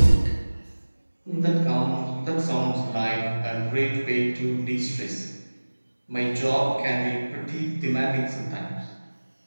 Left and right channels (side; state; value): both; inverted; correlation -1.00